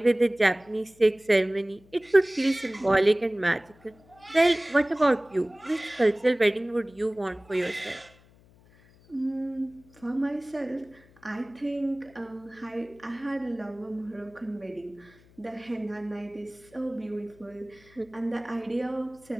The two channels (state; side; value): noise; left; hum, 27 dB below the sound